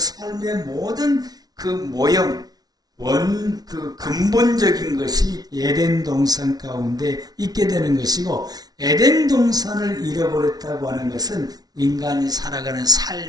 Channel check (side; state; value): left; late; 0.19 ms